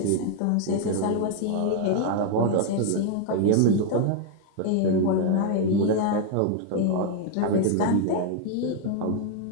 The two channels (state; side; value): different; both; correlation 0.00